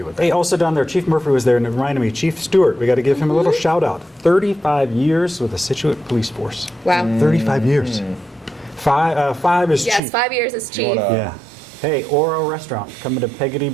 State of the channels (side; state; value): left; drops out; at 10.0 s